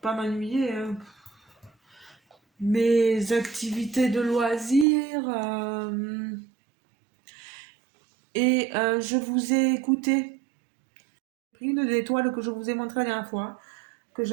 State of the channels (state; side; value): drops out; left; at 4.9 s